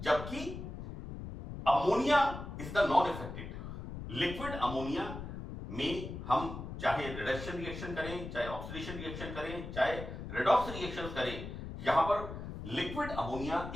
ammonia is the non affected. Liquid ammonia में हम चाहे रिडक्शन रिएक्शन करें, चाहे ऑक्सीडेशन रिएक्शन करें, चाहे रेडॉक्स रिएक्शन करें, यहां पर लिक्विड अमोनिया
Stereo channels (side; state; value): left; noise; rumble, 8 dB below the sound